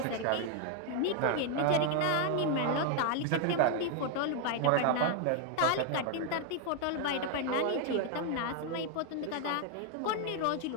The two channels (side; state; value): both; different; correlation 0.00